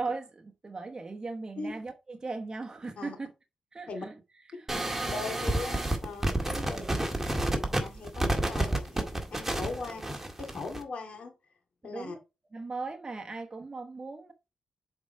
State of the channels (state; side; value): normal; both; correlation 0.90